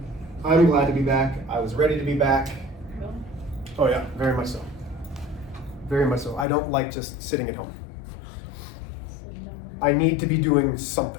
I'm glad to be back. I was ready to be back. Oh yeah, very much so. Very much so. I don't like just sitting at home. I need to be doing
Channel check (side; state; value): right; drops out; at 6.5 s